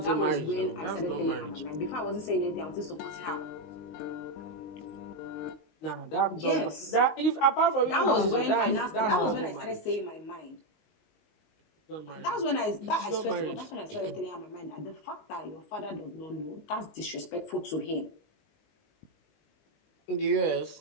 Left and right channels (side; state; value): right; late; 19 ms